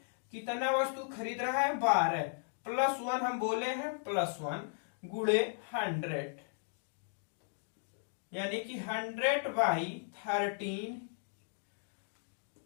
कितना वस्तु खरीद रहा है, 12 +1 हम बोले हैं, +1 गुणे 100, यानी कि 100/13,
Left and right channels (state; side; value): silent; right; digital silence